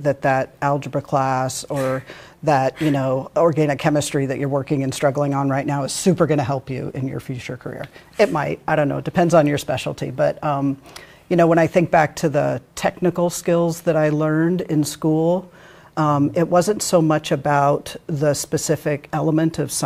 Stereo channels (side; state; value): both; identical; correlation 1.00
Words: that algebra class or that, you know, organic chemistry that you're working and struggling on right now is super going to help you in your future career. It might, I don't know, it depends on your specialty. But, you know, when I think back to the technical skills that I learned in school, it wasn't so much about the specific element of